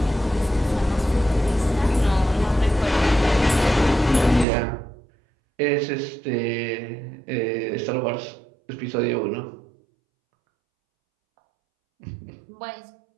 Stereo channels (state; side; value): drops out; left; at 4.5 s